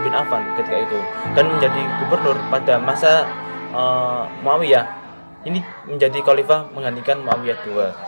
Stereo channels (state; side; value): inverted; both; correlation -1.00